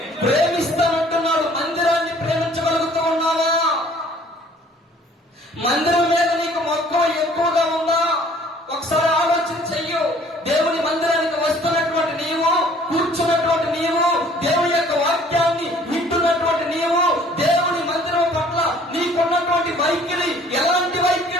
ప్రేమిస్తానంటున్నాడు. మందిరాన్ని ప్రేమించగలుగుతూ ఉన్నావా? మందిరం మీద నీకు మక్కువ ఎక్కువగా ఉందా? ఒకసారి ఆలోచన చెయ్యు. దేవుని మందిరానికి వస్తున్నటువంటి నీవు, కూర్చున్నటువంటి నీవు, దేవుని యొక్క వాక్యాన్ని వింటున్నటువంటి నీవు, దేవుని మందిరం పట్ల నీకున్నటువంటి వైఖరి ఎలాంటి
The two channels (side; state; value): both; normal; correlation 0.55